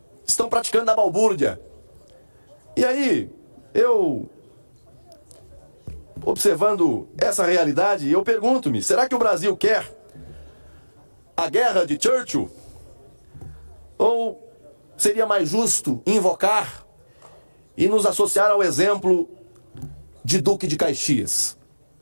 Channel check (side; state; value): both; inverted; correlation -1.00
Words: Estão praticando a balbúrdia. E aí, eu, observando essa realidade, eu pergunto-me, será que o Brasil quer a guerra de Churchill? Ou seria mais justo invocar e nos associar ao exemplo de Duque de Caxias?